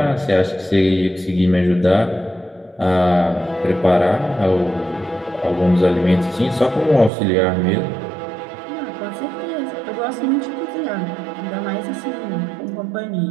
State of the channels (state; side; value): drops out; left; at 7.1 s